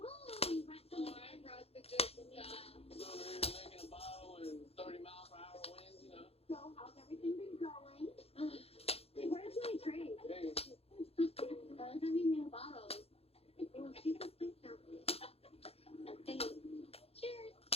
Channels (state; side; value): late; right; 0.29 ms